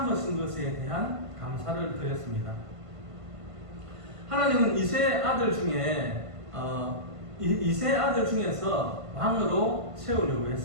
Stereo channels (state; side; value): late; left; 1.5 ms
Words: 것에 대한 감사를 드렸습니다. 하나님은 이세 아들 중에서 왕으로 세우려고